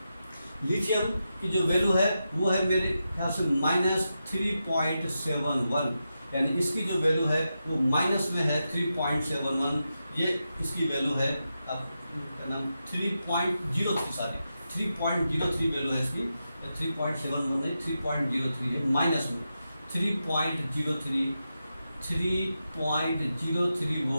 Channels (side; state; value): both; inverted; correlation -0.88